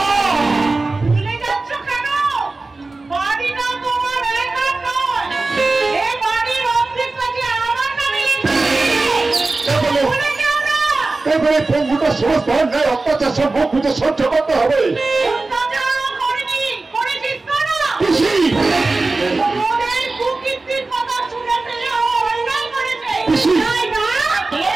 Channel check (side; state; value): left; quieter; 3.4 dB